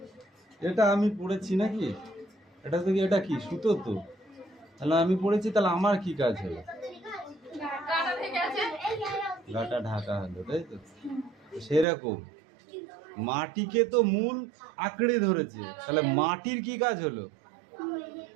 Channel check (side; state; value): left; drops out; at 11.9 s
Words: এটা আমি পড়েছি নাকি? এটা থেকে এটা কি সুতো তো, তাহলে আমি পড়েছি, তাহলে আমার কি কাজ হলো? গাটা ঢাকা হলো, তাই তো? সেরকম মাটিকে তো মূল আঁকড়ে ধরেছে, তাহলে মাটির কি কাজ হলো?